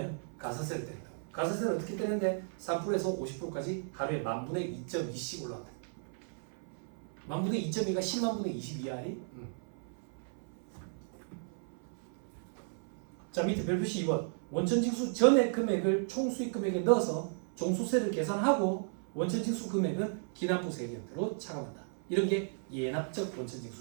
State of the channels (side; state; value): left; silent; 55 dB below the other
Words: 가산세를 때린다. 가산세는 어떻게 때리는데 3%에서 50%까지 하루에 만분의 2.2씩 올라간다. 만분의 2.2가 10만분의 22야리? 자, 밑에 별표시 2번. 원천징수 전의 금액을 총수익 금액에 넣어서 종수세를 계산하고 원천징수 금액은 기납부세 형태로 차감한다. 이런 게 예납적